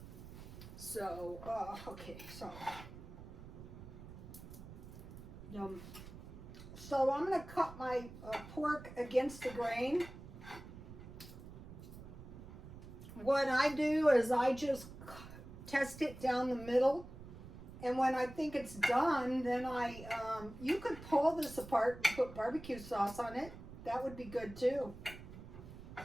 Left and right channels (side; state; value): right; noise; rumble, 14 dB below the sound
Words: So, okay, so. So I'm going to cut my pork against the grain. What I do is I just test it down the middle. And when I think it's done, then you could pull this apart and put barbecue sauce on it. That would be good too.